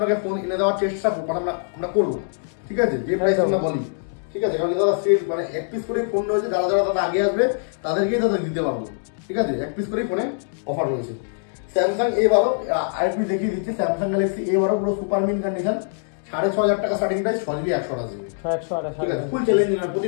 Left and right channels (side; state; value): right; silent; digital silence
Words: ফোন এনে দেওয়ার চেষ্টা আমরা করবো, ঠিক আছে, যে প্রাইস আমরা বলি, ঠিক আছে। কারণ দাদা সেল মানে এক পিস করে ফোন রয়েছে, যারা যারা দাদা আগে আসবে তাদেরকেই দাদা দিতে পারবো, ঠিক আছে, এক পিস করে ফোনে অফার রয়েছে। স্যামসাং A12 আরেকটু দেখিয়ে দিচ্ছি। স্যামসাং গ্যালাক্সি A12 পুরো সুপার মিন কন্ডিশন, 6,500 টাকা স্টার্টিং প্রাইস, 6GB 128GB, ঠিক আছে, ফুল চ্যালেঞ্জিং।